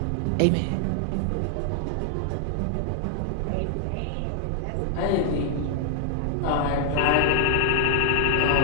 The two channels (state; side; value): different; both; correlation 0.00